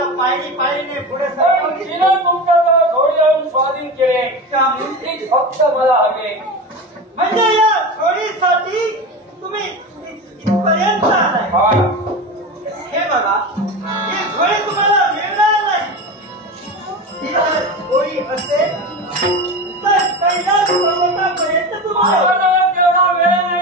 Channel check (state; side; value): normal; both; correlation 0.25